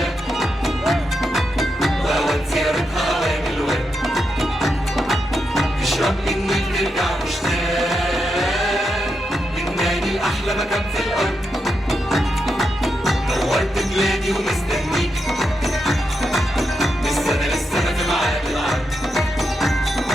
واوان زيارتها اوان الورد، تشرب من النيل ترجع مشتاق، لبناني احلى مكان في الارض، نورت بلادي ومستنيك، من السنة للسنة في ميعاد العرض،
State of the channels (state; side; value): normal; both; correlation 0.85